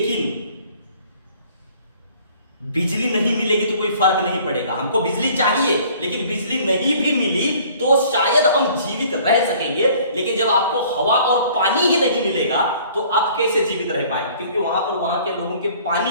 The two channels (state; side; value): inverted; both; correlation -0.54